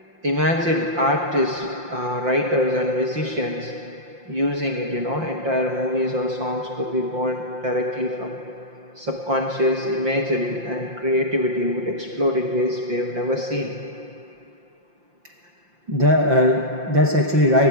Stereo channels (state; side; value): late; left; 5.7 ms